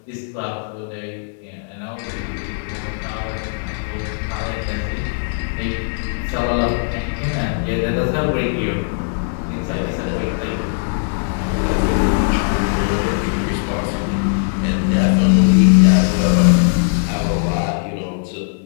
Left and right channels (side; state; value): right; silent; 62 dB below the other